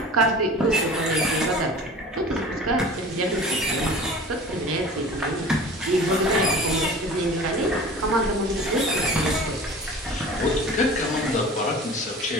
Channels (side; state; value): both; normal; correlation 0.40